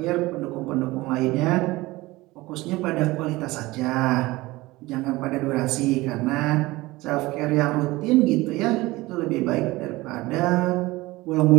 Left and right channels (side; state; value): left; quieter; 20.1 dB